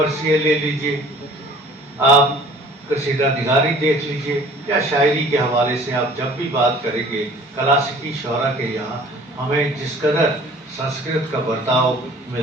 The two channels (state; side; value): normal; both; correlation 0.50